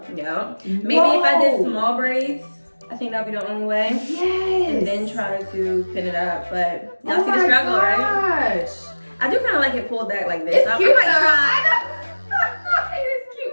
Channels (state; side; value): inverted; both; correlation -1.00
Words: Yeah. Maybe if I did small braids, I think that'd be the only way. Yes. And then try to pin it up. But y'all Oh see the my struggle, right? gosh. I do kind of like it pulled back like this. It's I cute might though. try. I know. It's